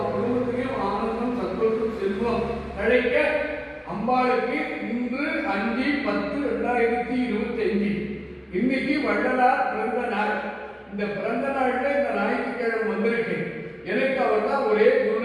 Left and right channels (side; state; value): both; identical; correlation 1.00